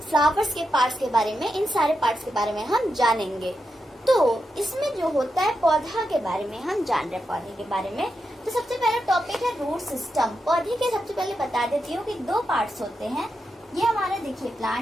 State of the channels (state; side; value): normal; both; correlation 0.87